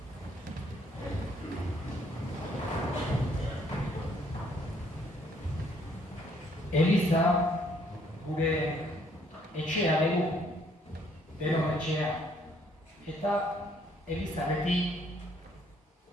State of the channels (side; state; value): both; normal; correlation 0.66